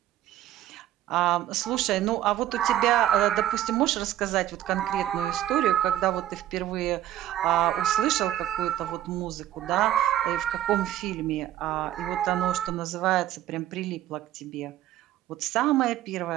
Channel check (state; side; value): quieter; left; 12.8 dB